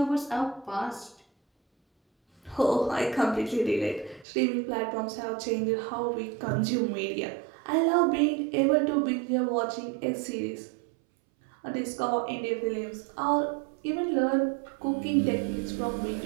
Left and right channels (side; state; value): left; drops out; at 4.2 s